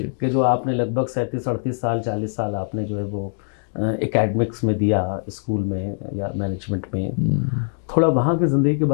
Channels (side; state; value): right; silent; 64 dB below the other